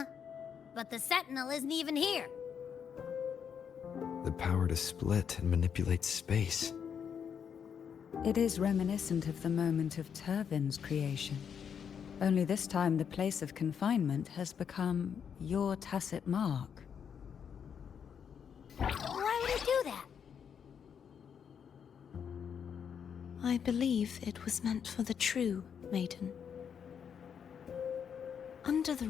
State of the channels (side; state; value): right; quieter; 7.5 dB